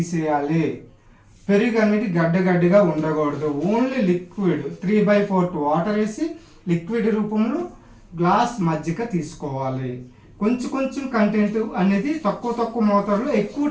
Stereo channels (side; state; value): both; identical; correlation 1.00